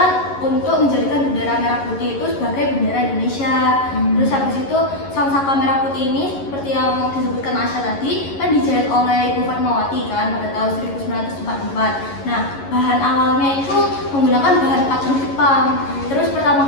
untuk menjadikan bendera merah putih itu sebagai bendera Indonesia. Terus habis itu sangsaka merah putih ini seperti yang disebutkan Asya tadi kan dijahit oleh Ibu Fatmawati kan pada tahun 1944. Nah, bahan awalnya itu menggunakan bahan kacang Jepang. Terus pertama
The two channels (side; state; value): right; late; 11 ms